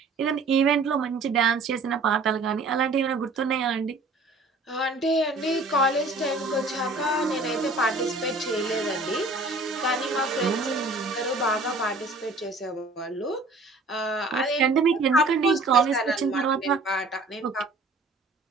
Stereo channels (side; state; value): left; quieter; 3.2 dB